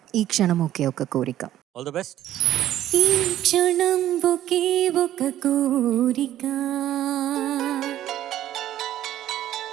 ఈ క్షణం ఒకే ఒక కోరిక. All the best. ఈ క్షణం ఒకే ఒక కోరిక,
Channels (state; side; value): quieter; left; 12.6 dB